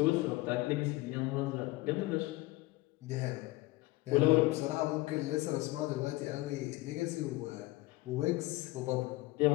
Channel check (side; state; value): right; quieter; 20.3 dB